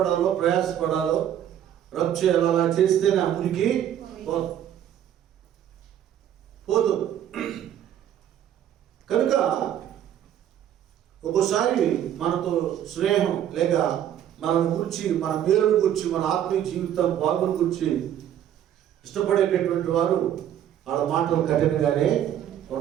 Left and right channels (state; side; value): quieter; left; 10.6 dB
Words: ప్రయాసపడాలో, రబ్ చేయాలో అలా చేస్తేనే ఆ మురికి పోదు. కనుక ఒక్కోసారి మనతో స్నేహం లేక మన గురించి, మన మేలును గురించి, మన ఆత్మీయ జీవితం బాగుని గురించి ఇష్టపడేటటువంటి వారు వాళ్ళ మాటలు కఠినంగానే